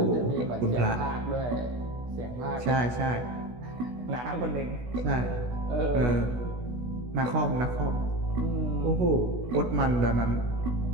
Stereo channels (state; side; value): late; left; 16 ms